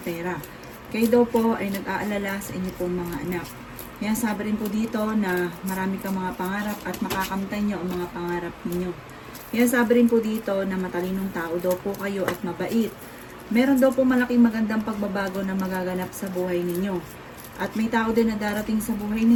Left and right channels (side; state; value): both; identical; correlation 1.00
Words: pera. Kayo daw po ay nag-aalala sa inyo pong mga anak. Kaya sabi rin po dito na marami kang mga pangarap at makakamtan nyo ang mga pangarap ninyo. Kaya sabi rin po dito na matalinong tao daw po kayo at mabait. Meron daw po malaking magandang pagbabago na magaganap sa buhay ninyo. At may tao din na darating sa buhay